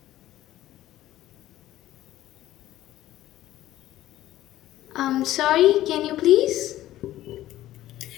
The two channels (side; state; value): right; quieter; 14.3 dB